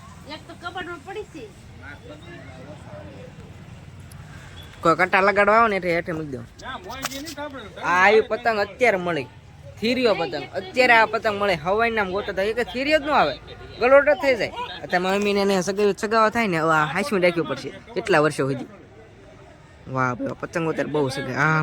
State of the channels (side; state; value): both; identical; correlation 1.00